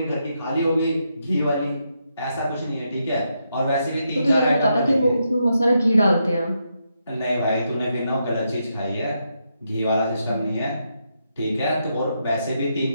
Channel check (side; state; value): both; inverted; correlation -0.82